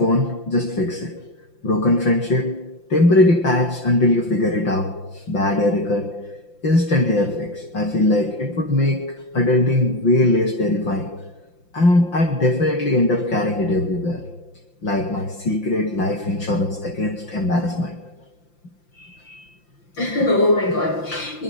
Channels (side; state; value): right; late; 5.8 ms